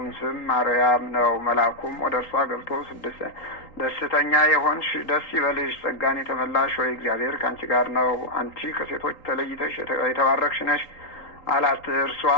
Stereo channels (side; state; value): right; late; 3.8 ms